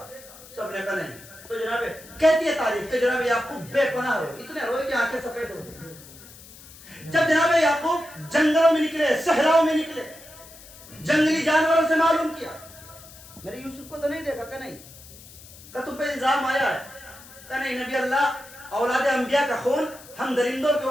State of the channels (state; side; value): noise; left; hiss, 19 dB below the sound